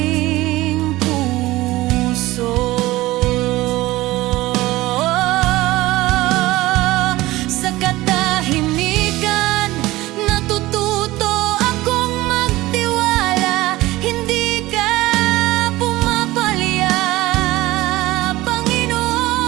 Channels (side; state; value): left; quieter; 18.3 dB